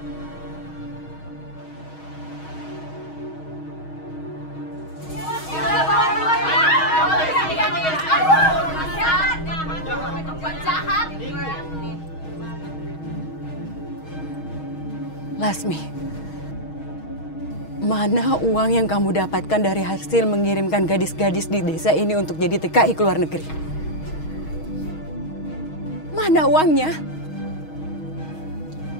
Lasmi, mana uang yang kamu dapatkan dari hasil mengirimkan gadis-gadis di desa ini untuk jadi TKI ke luar negeri? Mana uangnya?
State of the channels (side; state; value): right; late; 6.3 ms